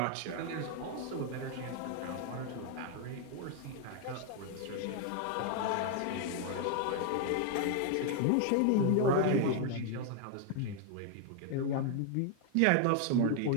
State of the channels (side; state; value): both; different; correlation 0.00